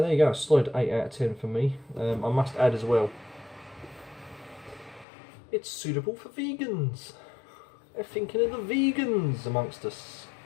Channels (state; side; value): drops out; right; at 5.1 s